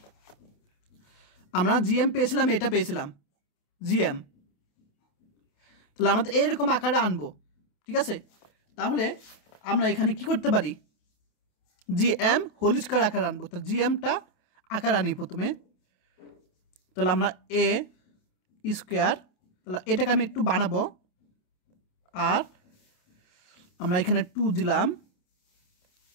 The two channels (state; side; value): late; right; 28 ms